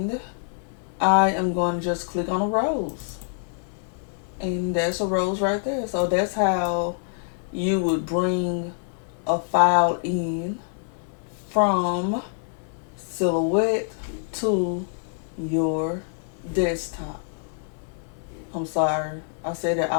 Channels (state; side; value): silent; right; 61 dB below the other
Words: I am going to just click on a rose. And that's a rose right there. So that's how you would bring a file in from Silhouette to your desktop. I'm sorry, I said that